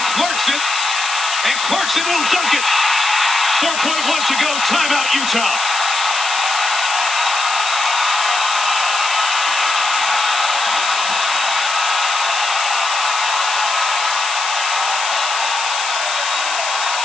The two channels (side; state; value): left; noise; hiss, 4 dB below the sound